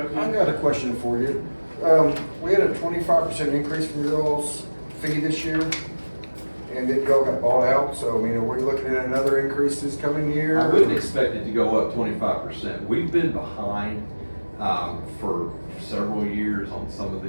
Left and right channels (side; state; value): both; inverted; correlation -1.00